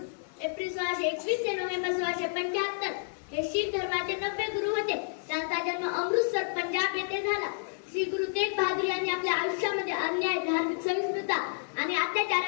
एप्रिल 1621 ते नोव्हेंबर 1675 हे शीख धर्माचे 90 गुरु होते. त्यांचा जन्म अमृतसर पंजाब येथे झाला. श्री गुरु तेग बहादूर यांनी आपल्या आयुष्यामध्ये अन्याय, धार्मिक सहिष्णुता आणि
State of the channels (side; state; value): right; silent; digital silence